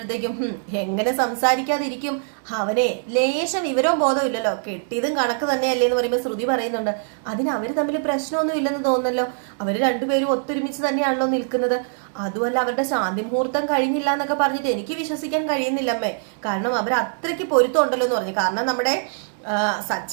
എങ്ങനെ സംസാരിക്കാതിരിക്കും, അവനെ ലേശം വിവരവും ബോധവും ഇല്ലല്ലോ, കെട്ടിയതും കണക്ക് തന്നെയല്ലേ എന്ന് പറയുമ്പോൾ ശ്രുതി പറയുന്നുണ്ട് അതിന് അവര് തമ്മിൽ പ്രശ്നമൊന്നും ഇല്ലെന്ന് തോന്നുന്നല്ലോ, അവര് രണ്ടുപേരും ഒത്തൊരുമിച്ച് തന്നെയാണല്ലോ നിൽക്കുന്നത്, അതുമല്ല അവരുടെ ശാന്തി മുഹൂർത്തം കഴിഞ്ഞില്ല എന്നൊക്കെ പറഞ്ഞിട്ട് എനിക്ക് വിശ്വസിക്കാൻ കഴിയുന്നില്ലമ്മേ, കാരണം അവർ അത്രയ്ക്ക് പൊരുത്തം ഉണ്ടല്ലോ എന്ന് പറഞ്ഞു. കാരണം നമ്മുടെ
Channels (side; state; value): left; silent; 64 dB below the other